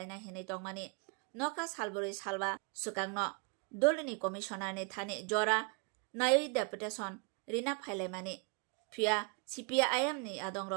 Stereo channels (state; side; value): quieter; left; 32.9 dB